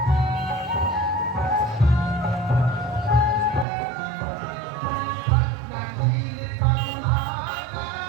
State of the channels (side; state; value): left; drops out; at 3.7 s